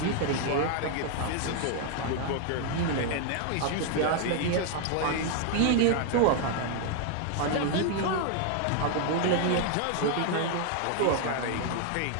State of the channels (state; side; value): different; both; correlation 0.00